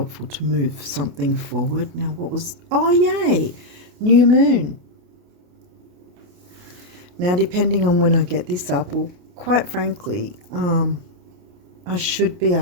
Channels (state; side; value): late; left; 28 ms